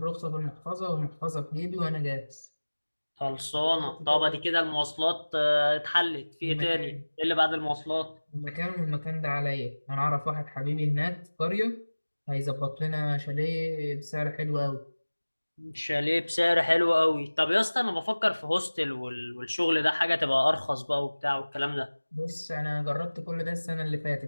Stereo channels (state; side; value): inverted; both; correlation -1.00